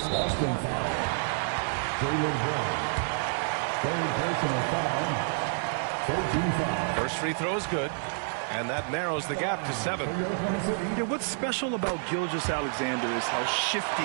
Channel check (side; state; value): left; silent; digital silence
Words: First free throw is good, and that narrows the gap to 7. Yeah, what's special about Gilgeous-Alexander is how shifty